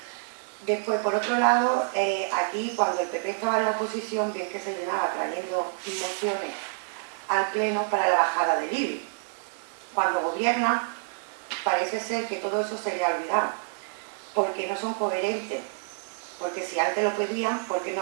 Después, por otro lado, aquí cuando el PP estaba en la oposición, bien que se llenaba trayendo mociones al Pleno para la bajada del IBI. Cuando gobierna, parece ser que todo eso se le ha olvidado, porque no son coherentes. Porque si antes lo pedían, ¿por qué no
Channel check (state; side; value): silent; left; digital silence